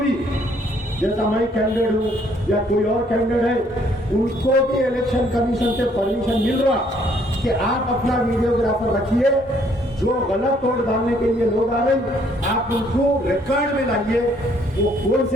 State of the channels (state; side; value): normal; both; correlation 0.65